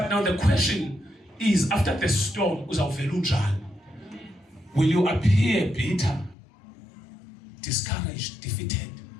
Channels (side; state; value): right; drops out; at 6.4 s